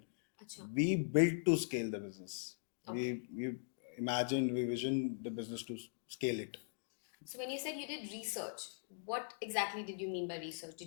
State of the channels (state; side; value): silent; right; digital silence